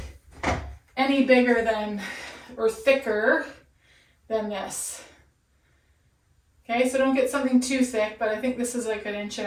any bigger than or thicker than this. Okay, so don't get something too thick, but I think this is like 1.5 inches.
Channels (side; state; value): both; identical; correlation 1.00